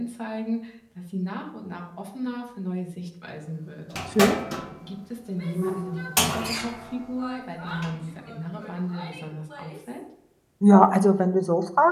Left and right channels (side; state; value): both; identical; correlation 1.00